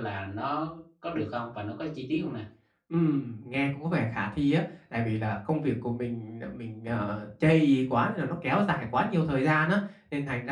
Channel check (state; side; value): identical; both; correlation 1.00